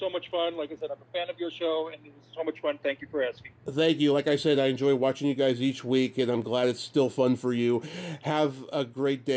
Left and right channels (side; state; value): both; identical; correlation 1.00